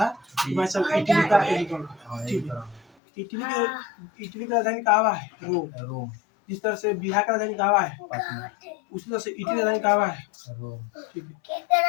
भाई साहब इटली का एकीकरण, ठीक है। इटली का राजधानी कहाँ है? रोम। जिस तरह से बिहार का राजधानी कहाँ है? उसी तरह से इटली का राजधानी कहाँ है? ठीक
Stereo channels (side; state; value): right; drops out; at 2.9 s